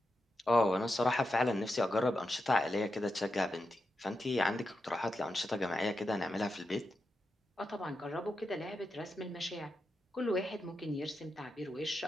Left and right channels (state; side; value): normal; both; correlation 0.88